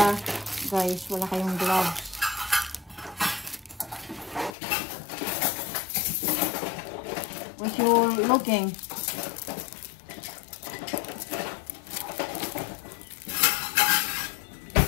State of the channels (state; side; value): drops out; right; at 4.5 s